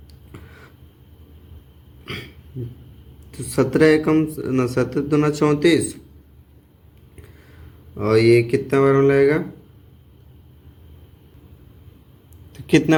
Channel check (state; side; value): identical; both; correlation 1.00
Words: तो 17 एकम 17 दूना 34, और ये कितना बार में लगेगा, तो